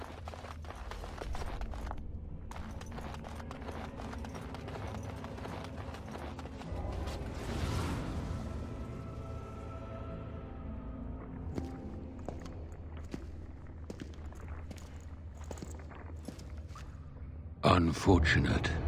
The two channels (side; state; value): both; identical; correlation 1.00